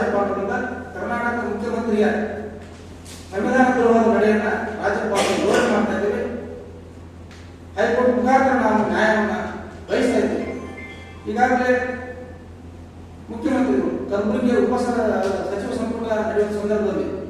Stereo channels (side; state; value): both; identical; correlation 1.00